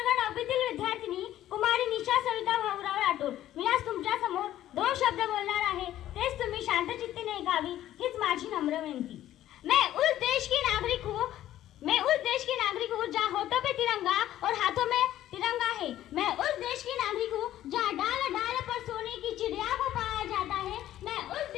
9वीतील विद्यार्थिनी कुमारी निशा सविता भाऊराव राठोड. मी आज तुमच्या समोर 2 शब्द बोलणार आहे. तेच तुम्ही शांतचित्तीने ऐकावी हीच माझी नम्र विनंती. मैं उस देश की नागरिक हूँ जहाँ होठों पे तिरंगा और हाथों में तिरंगा है. मैं उस देश की नागरिक हूँ जहाँ डाल डाल पर सोने की चिड़िया को पाया जाता है. मैं उस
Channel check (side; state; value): right; quieter; 13.0 dB